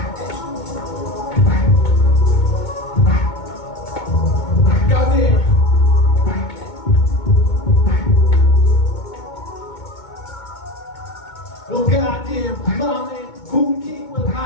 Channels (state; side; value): late; right; 2.2 ms